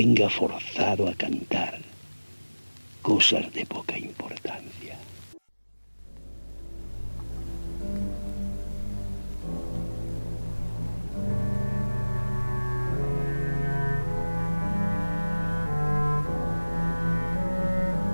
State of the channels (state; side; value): inverted; both; correlation -1.00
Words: forzado a cantar cosas de poca importancia.